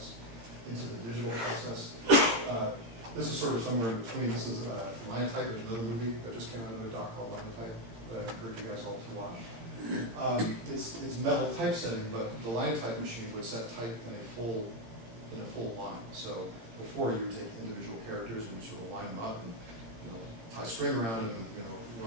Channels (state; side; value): late; left; 18 ms